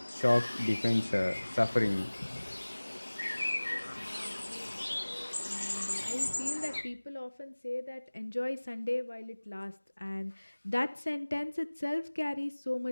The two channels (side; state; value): both; inverted; correlation -1.00